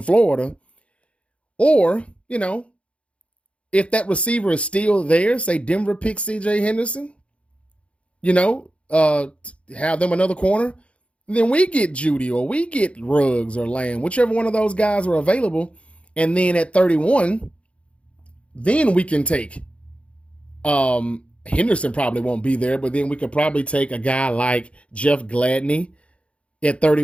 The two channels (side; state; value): right; late; 0.061 ms